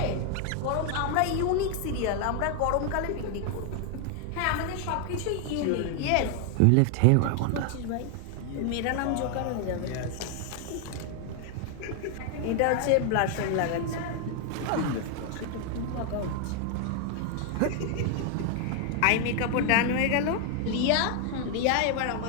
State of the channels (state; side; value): different; both; correlation 0.00